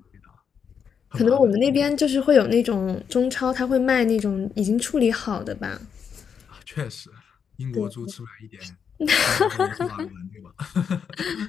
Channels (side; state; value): right; quieter; 7.0 dB